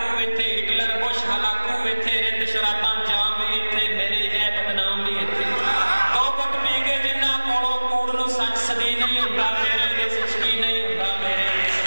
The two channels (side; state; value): both; inverted; correlation -1.00